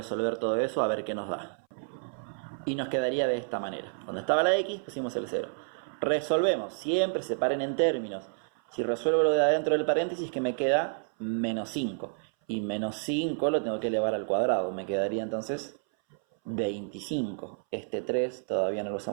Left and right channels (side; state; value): left; silent; 58 dB below the other